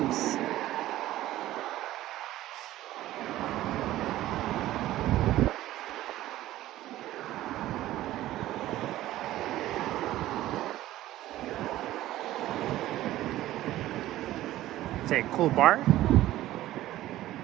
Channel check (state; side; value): quieter; left; 14.9 dB